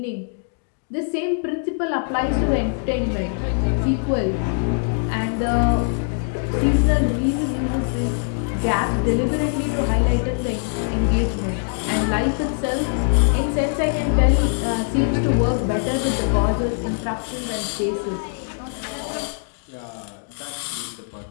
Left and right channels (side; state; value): right; silent; 63 dB below the other